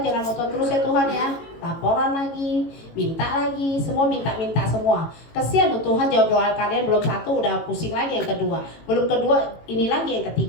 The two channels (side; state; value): right; late; 18 ms